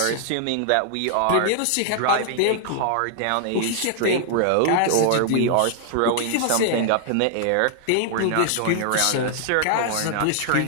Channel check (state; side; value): different; both; correlation 0.00